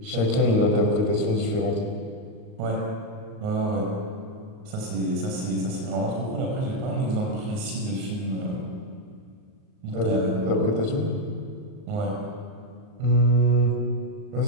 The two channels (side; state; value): left; late; 38 ms